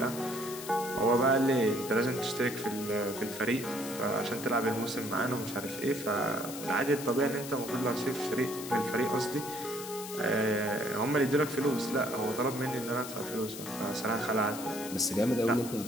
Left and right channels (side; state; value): left; noise; hiss, 11 dB below the sound